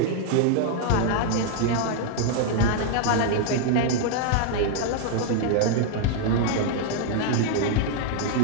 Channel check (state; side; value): different; both; correlation 0.00